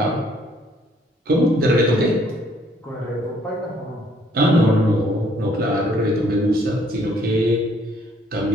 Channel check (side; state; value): both; normal; correlation 0.64